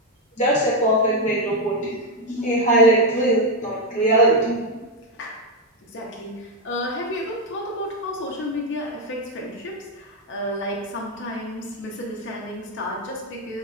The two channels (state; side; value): normal; both; correlation 0.05